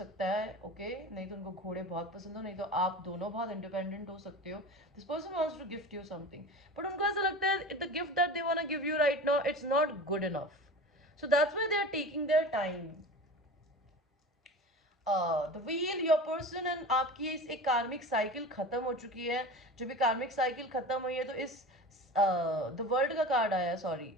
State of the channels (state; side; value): normal; both; correlation 0.33